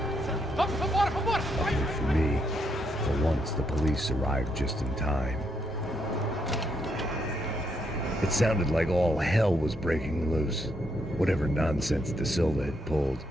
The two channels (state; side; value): normal; both; correlation 0.77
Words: And for me, for once the police arrived just in time. It sounded like all hell was breaking loose. Whatever nonsense De Silva had pulled,